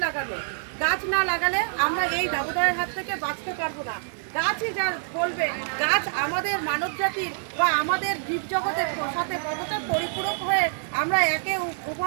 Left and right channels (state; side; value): silent; left; digital silence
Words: লাগানো। গাছ না লাগালে আমরা এই দাবদাহের হাত থেকে বাঁচতে পারবো না। গাছই যা বলবে, গাছ আমাদের মানব জাতির বা আমাদের জীবজগতের সাথে কতটা পরিপূরক হয়ে আমরা একে